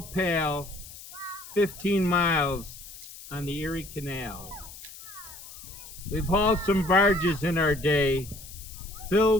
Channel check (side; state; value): left; noise; hiss, 16 dB below the sound